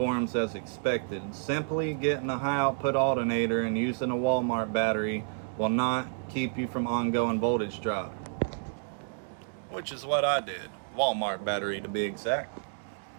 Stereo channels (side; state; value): left; silent; digital silence